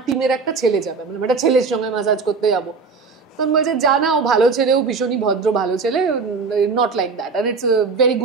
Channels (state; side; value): quieter; left; 4.7 dB